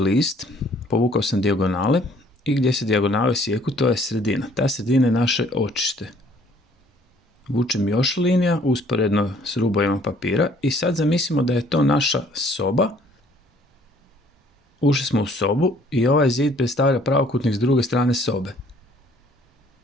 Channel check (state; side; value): normal; both; correlation 0.59